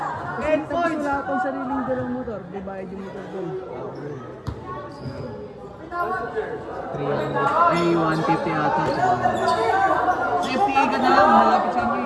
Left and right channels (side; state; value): both; identical; correlation 1.00